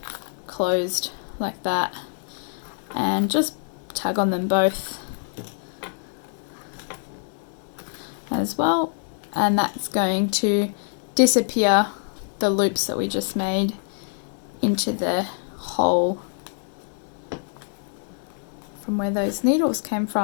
closed like that, and just tug on them both as well, and that's going to disappear the loops that we just made into the hole from where those needles came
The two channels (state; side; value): silent; right; digital silence